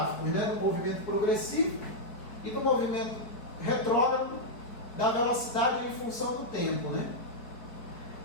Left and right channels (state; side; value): late; right; 4.6 ms